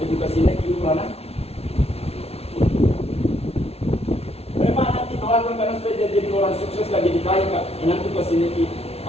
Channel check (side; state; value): right; late; 0.30 ms